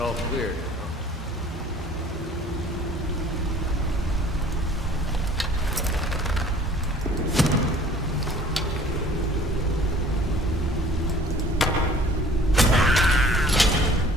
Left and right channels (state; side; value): normal; both; correlation 0.51